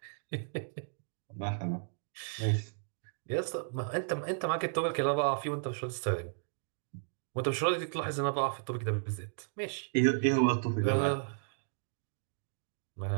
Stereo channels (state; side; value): silent; left; digital silence